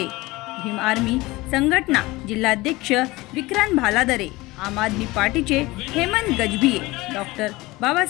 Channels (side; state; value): right; quieter; 20.8 dB